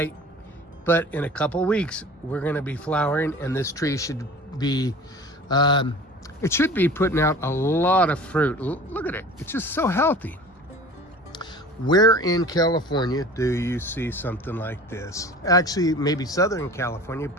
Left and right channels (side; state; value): both; normal; correlation 0.41